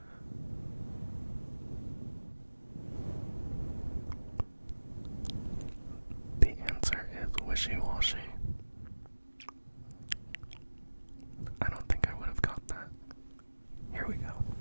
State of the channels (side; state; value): both; inverted; correlation -1.00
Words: The answer is wishy-washy. I don't think I would have got that. Here we go.